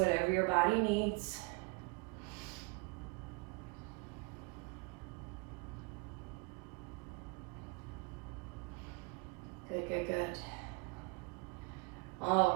your body needs. Good, good, good.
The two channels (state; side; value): quieter; left; 30.5 dB